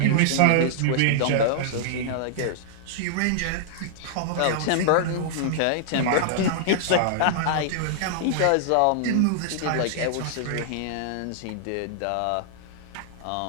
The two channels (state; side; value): different; both; correlation -0.01